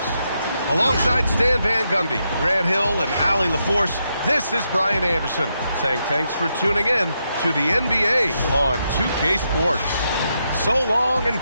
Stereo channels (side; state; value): both; inverted; correlation -0.82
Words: Alongside Stan Van Gundy, Grant Hill, and Allie LaForce, this is Brian Anderson saying thanks for tuning in to the NBA on 2K Sports. So long and